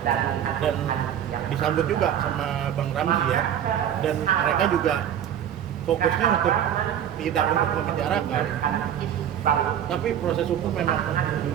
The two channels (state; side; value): quieter; left; 9.9 dB